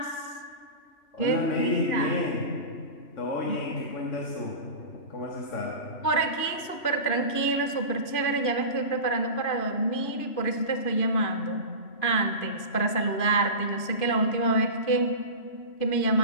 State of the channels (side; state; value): right; late; 2.5 ms